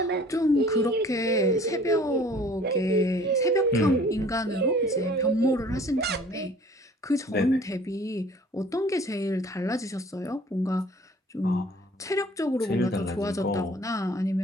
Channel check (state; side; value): normal; both; correlation 0.51